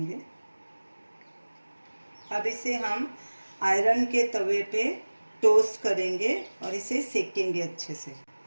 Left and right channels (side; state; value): both; inverted; correlation -1.00